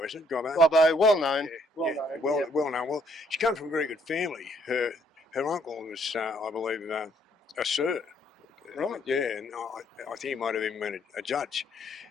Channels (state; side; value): normal; both; correlation 0.67